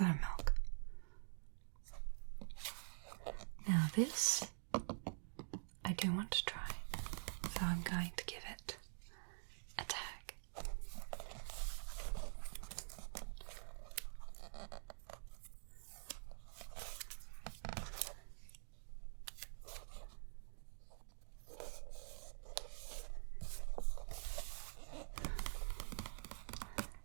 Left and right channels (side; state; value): left; silent; digital silence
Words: and milk. Now this, I do want to try. So I'm going to give it a tag.